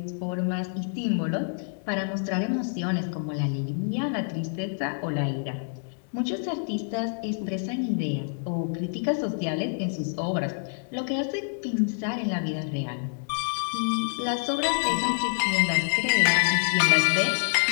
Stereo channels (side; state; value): right; silent; digital silence